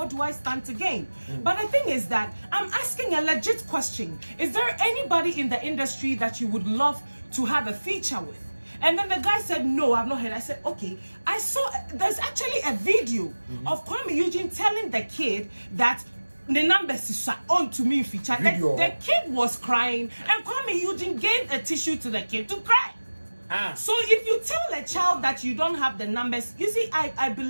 do I stand to gain? But the thing is that I'm asking a legit question. Is there anybody in the industry that you would love to have a feature with? And then the guy said, no, I've not heard. I said, okay. I saw, there's actually a video of Kwame Eugene telling the kid that the numbers is on to me feature. The kid was crying, and Kwame Eugene gave a tissue to the kid to cry. So if you tell a child that you don't have the numbers, you see, I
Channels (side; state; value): both; inverted; correlation -1.00